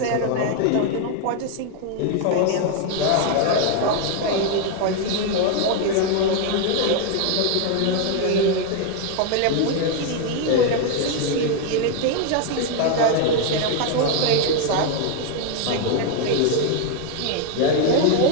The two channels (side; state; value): both; different; correlation 0.01